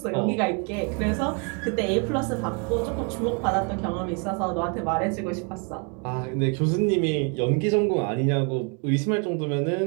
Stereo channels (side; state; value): left; quieter; 35.2 dB